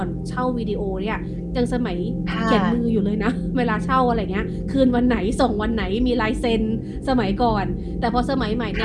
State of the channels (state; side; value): identical; both; correlation 1.00